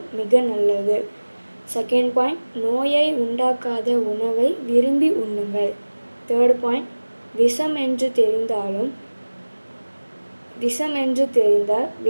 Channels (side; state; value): both; inverted; correlation -1.00